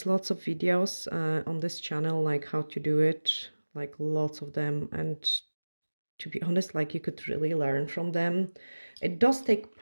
lots of videos on this channel like how to do it, like lots of them, and to be honest, like you could really learn from them. It does take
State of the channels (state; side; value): inverted; both; correlation -1.00